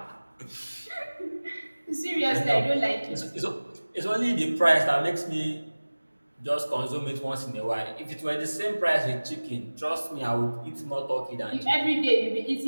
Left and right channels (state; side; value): inverted; both; correlation -1.00